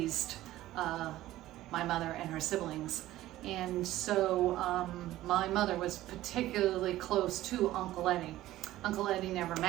my mother and her siblings. And so my mother was particularly close to Uncle Eddie. Uncle Eddie never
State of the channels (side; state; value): left; quieter; 15.2 dB